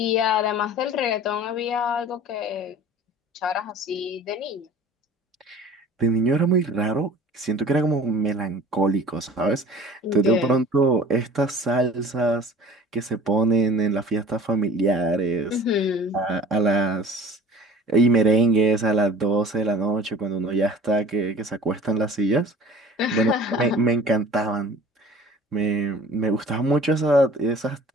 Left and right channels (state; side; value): normal; both; correlation 0.45